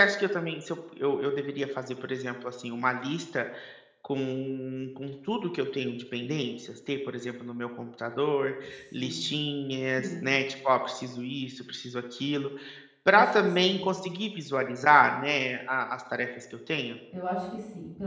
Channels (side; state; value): both; identical; correlation 1.00